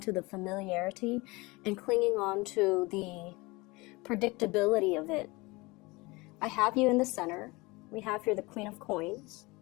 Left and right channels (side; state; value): right; quieter; 23.9 dB